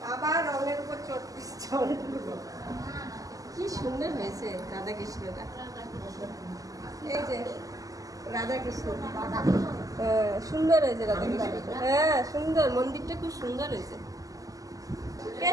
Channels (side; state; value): left; late; 0.17 ms